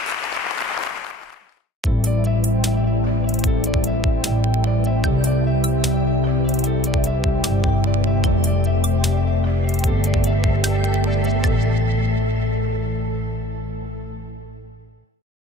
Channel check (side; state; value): both; normal; correlation 0.53